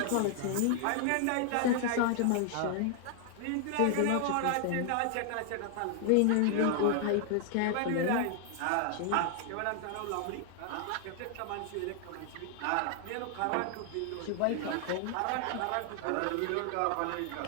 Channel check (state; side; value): different; both; correlation 0.00